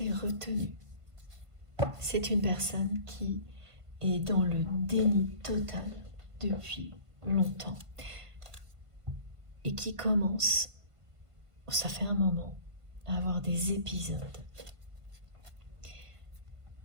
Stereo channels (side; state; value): left; late; 1.5 ms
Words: est retenu. C'est une personne qui est dans le déni total depuis longtemps et qui commence, ça fait un moment, à avoir des épisodes